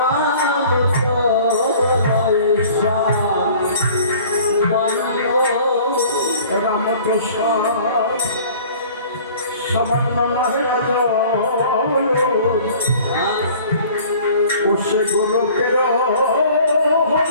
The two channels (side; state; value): both; inverted; correlation -0.49